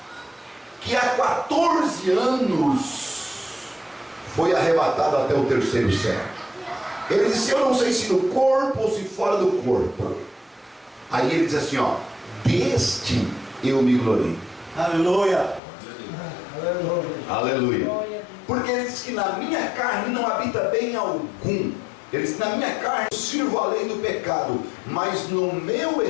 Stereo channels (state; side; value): drops out; right; at 15.6 s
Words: que há 14 anos foi arrebatado até o terceiro céu. Ele disse, eu não sei se no corpo ou se fora do corpo. Aí ele diz assim, ó, deste eu me glorio. Aleluia. Aleluia. Porque ele diz que na minha carne não habita bem algum. Ele diz, na minha carne eu sirvo a lei do pecado, mas no meu